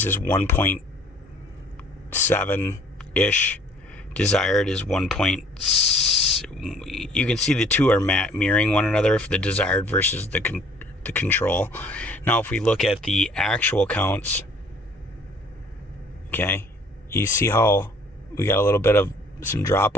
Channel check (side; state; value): both; normal; correlation 0.55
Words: is 1.7-ish. Desired is 1.6. You can see the two are mirroring one another for the desired versus the control. Now if we look at the actual counts, okay, you see how we got a little bit of some